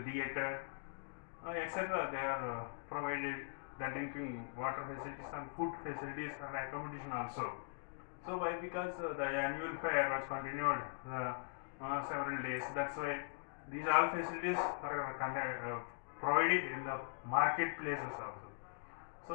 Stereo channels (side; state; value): right; silent; digital silence